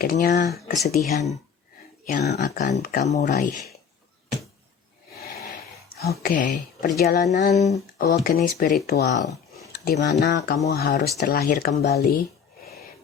kesedihan yang akan kamu raih. Oke, perjalanan awakening spiritual di mana kamu harus terlahir kembali,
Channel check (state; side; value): quieter; right; 7.0 dB